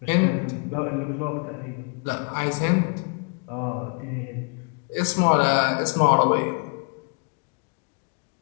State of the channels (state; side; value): quieter; right; 37.9 dB